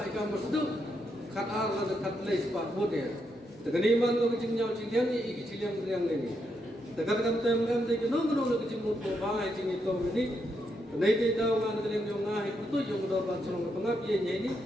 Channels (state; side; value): normal; both; correlation 0.80